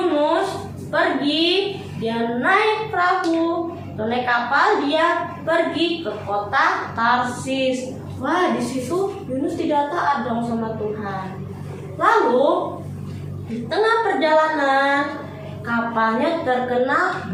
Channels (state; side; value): identical; both; correlation 1.00